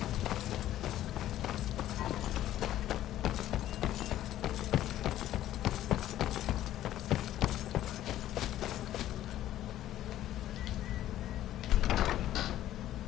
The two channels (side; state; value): right; quieter; 13.0 dB